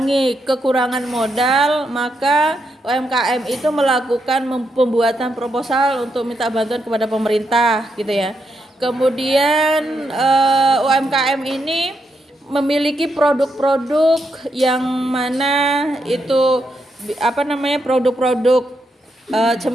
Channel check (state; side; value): normal; both; correlation 0.81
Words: kekurangan modal maka UMKM itu melakukan pembuatan proposal untuk minta bantuan kepada pemerintah gitu ya. Kemudian UMKM ini memiliki produk-produk yang mana itu produk-produk